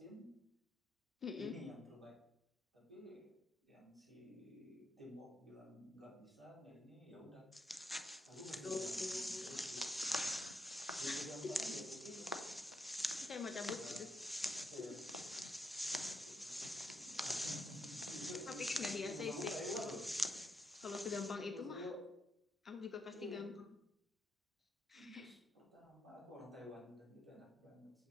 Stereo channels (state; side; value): normal; both; correlation 0.81